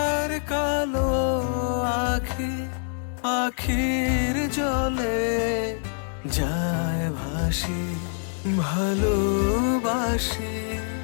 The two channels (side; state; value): right; silent; digital silence